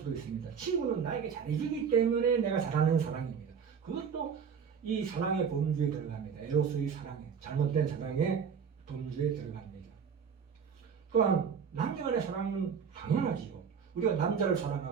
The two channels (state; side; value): quieter; left; 6.8 dB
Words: 있습니다. 친구는 나에게 잘해주기 때문에 내가 잘하는 사랑입니다. 그것도 이 사랑의 범주에 들어갑니다. 에로스의 사랑에, 잘못된 사랑의 범주에 들어갑니다. 또한 남녀 간의 사랑은 당연하지요. 우리가 남자를